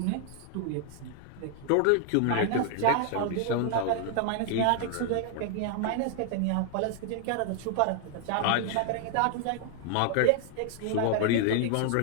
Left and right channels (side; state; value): both; different; correlation 0.00